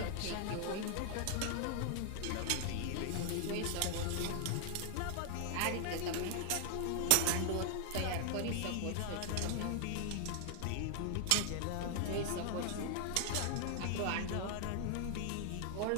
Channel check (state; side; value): different; both; correlation 0.00